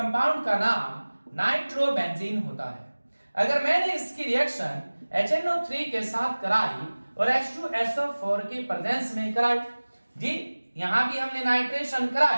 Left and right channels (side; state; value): both; inverted; correlation -1.00